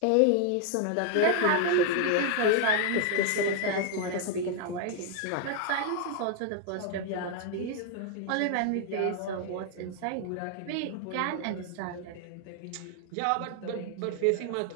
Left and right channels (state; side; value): different; both; correlation 0.00